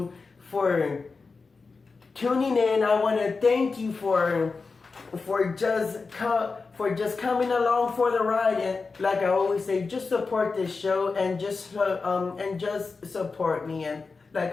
for tuning in. I want to thank you for just coming along for the ride, and like I always say, just support this show and just support me. And like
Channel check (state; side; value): quieter; right; 4.4 dB